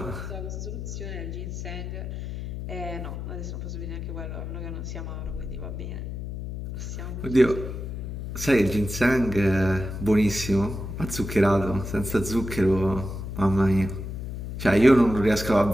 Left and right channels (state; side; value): noise; left; hum, 6 dB below the sound